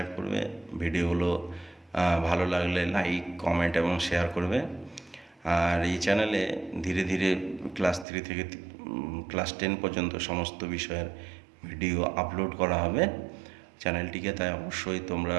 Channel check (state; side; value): drops out; left; at 8.1 s